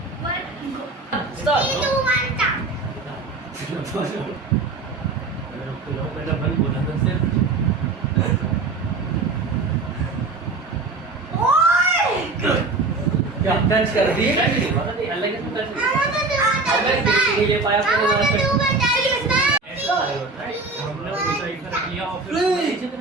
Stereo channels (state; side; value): quieter; left; 3.7 dB